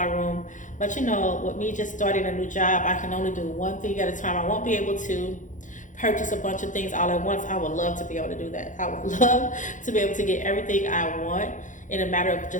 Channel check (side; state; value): right; late; 0.37 ms